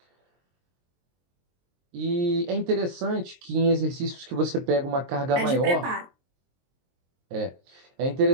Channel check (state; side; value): late; left; 23 ms